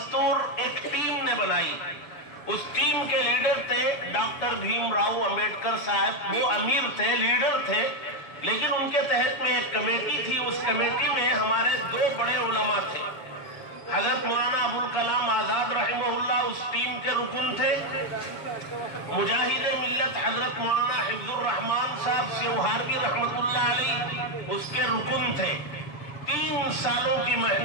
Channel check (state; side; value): late; right; 7.2 ms